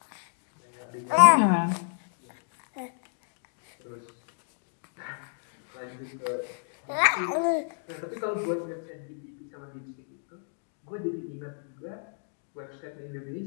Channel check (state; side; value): silent; right; digital silence